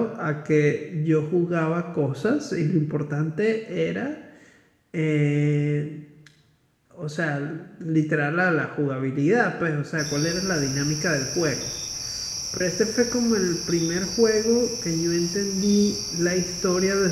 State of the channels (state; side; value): identical; both; correlation 1.00